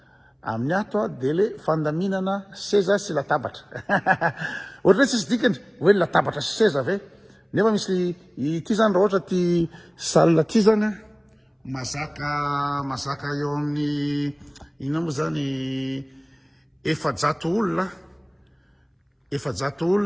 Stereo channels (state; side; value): identical; both; correlation 1.00